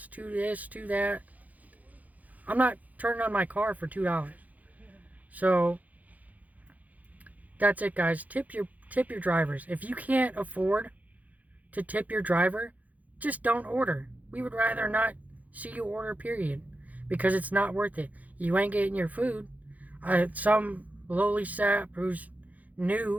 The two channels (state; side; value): late; left; 0.078 ms